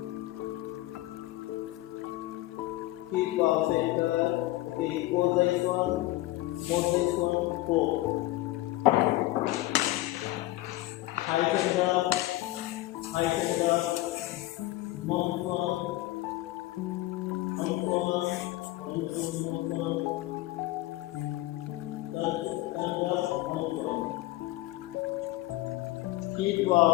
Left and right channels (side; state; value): right; quieter; 17.6 dB